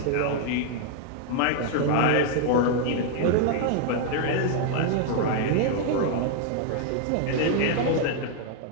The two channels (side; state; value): both; different; correlation 0.00